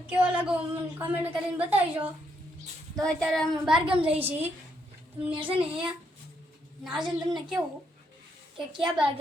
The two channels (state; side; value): normal; both; correlation 0.76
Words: કેવો લાગો મને કમેન્ટ કરીને બતાવજો. તો અત્યારે અમે બારગામ જઈએ છીએ. તમને છે ને નાજન તમને કેવું કે ક્યાં